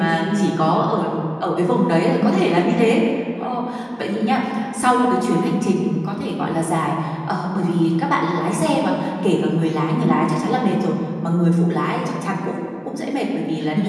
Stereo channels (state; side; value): identical; both; correlation 1.00